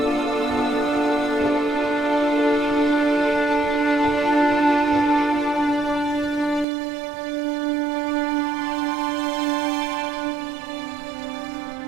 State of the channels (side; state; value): left; drops out; at 6.7 s